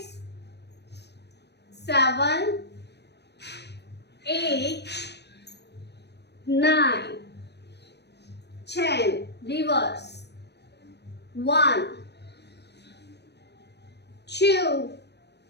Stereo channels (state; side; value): late; right; 0.49 ms